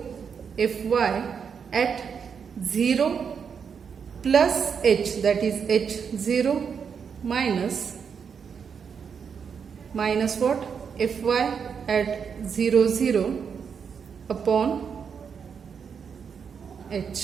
fy at 0 plus h, that is h 0 minus what? Fy at 0, 0 upon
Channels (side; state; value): left; quieter; 6.7 dB